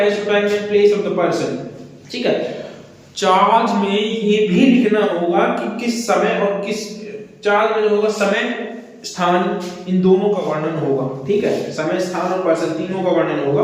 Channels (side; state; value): both; identical; correlation 1.00